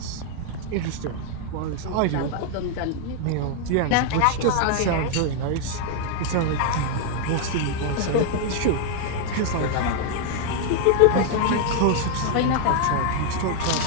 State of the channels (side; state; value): both; different; correlation 0.00